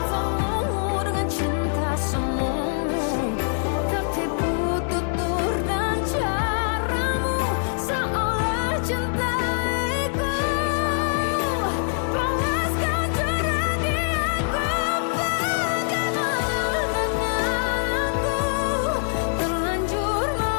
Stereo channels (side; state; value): right; silent; digital silence